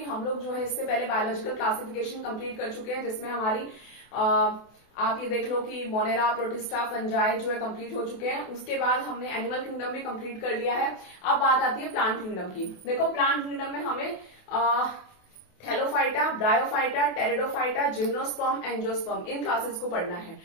हम लोग जो है इससे पहले बायोलॉजिकल क्लासिफिकेशन कंप्लीट कर चुके हैं, जिसमें हमारी आप ये देख लो कि मोनेरा, प्रोटिस्टा, फंजाई जो है कंप्लीट हो चुके हैं। उसके बाद हमने एनिमल किंगडम भी कंप्लीट कर लिया है। अब बात आती है प्लांट किंगडम की। देखो, प्लांट किंगडम में हमें Thallophyta, Bryophyta, Pteridophyta, gymnosperm, angiosperm इन क्लासेस को पढ़ना है।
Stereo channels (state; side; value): late; right; 28 ms